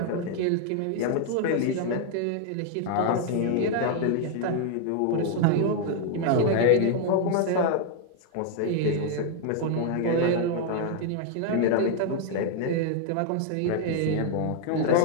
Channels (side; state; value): both; different; correlation 0.00